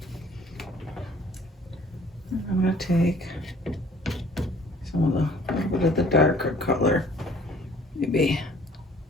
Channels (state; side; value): normal; both; correlation 0.54